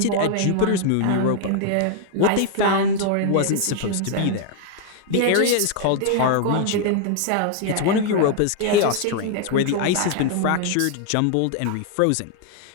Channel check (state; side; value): different; both; correlation 0.00